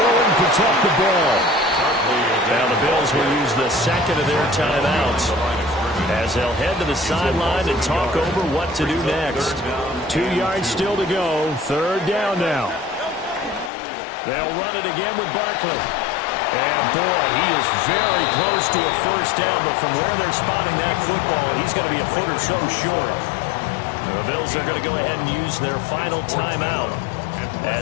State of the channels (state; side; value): drops out; right; at 13.7 s